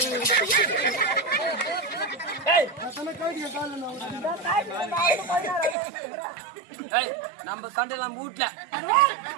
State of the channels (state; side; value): drops out; left; at 5.8 s